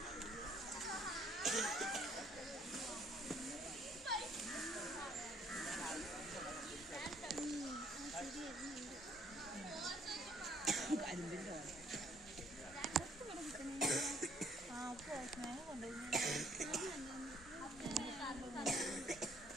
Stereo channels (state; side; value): normal; both; correlation 0.63